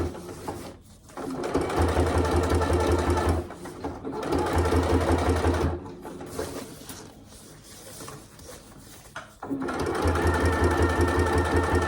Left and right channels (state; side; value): identical; both; correlation 1.00